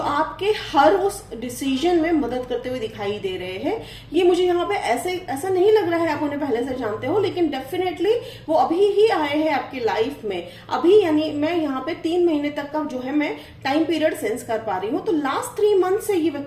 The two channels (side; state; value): both; identical; correlation 1.00